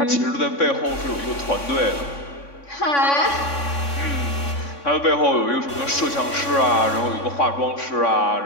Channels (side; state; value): right; late; 3.6 ms